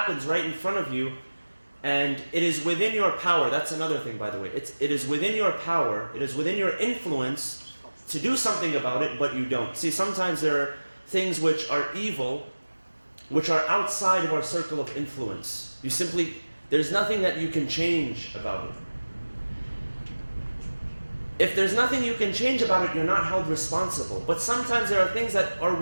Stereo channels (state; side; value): inverted; both; correlation -1.00